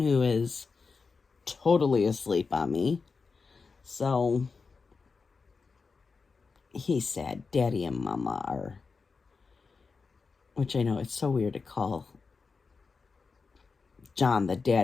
who is totally asleep on me. So, he's sad. Daddy and Mama are... Which I know, it's so weird to call John the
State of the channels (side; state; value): right; quieter; 4.7 dB